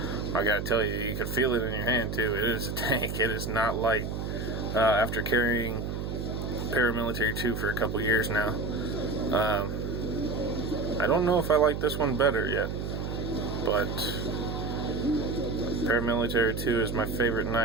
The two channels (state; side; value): noise; right; hum, 4 dB below the sound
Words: I gotta tell you, you can feel it in your hand too. It is a tank. It is not light. After carrying Paramilitary 2 for a couple years now, I don't know if I like this one better yet, but Paramilitary 2 is my favorite